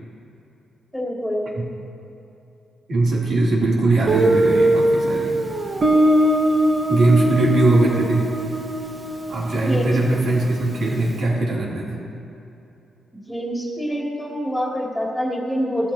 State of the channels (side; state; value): both; normal; correlation 0.86